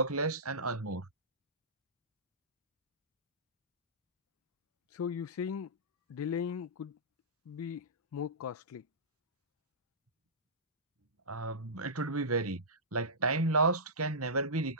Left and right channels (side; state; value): both; normal; correlation -0.18